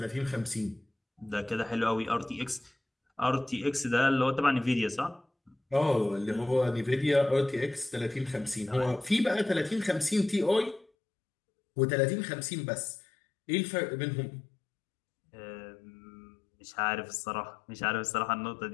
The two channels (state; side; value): drops out; right; at 10.9 s